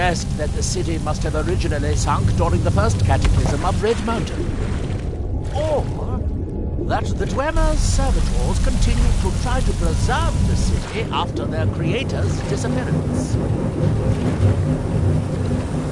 that the city must have originally sunk during the first cataclysm of Red Mountain. Or that the Dwemer's servitors continued to try to preserve the city after their creator's disappearance.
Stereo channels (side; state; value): both; identical; correlation 1.00